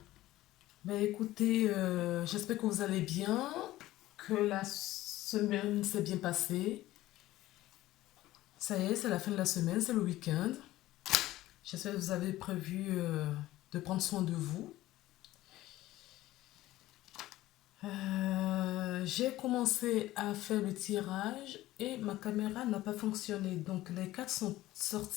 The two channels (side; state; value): right; quieter; 16.1 dB